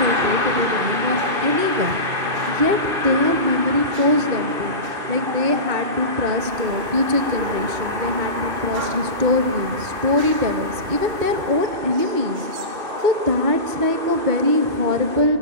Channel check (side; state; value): left; late; 2.7 ms